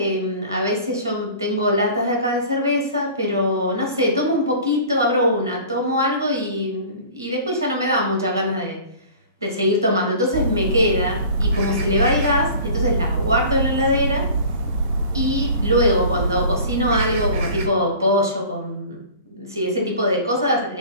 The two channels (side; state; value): both; inverted; correlation -0.43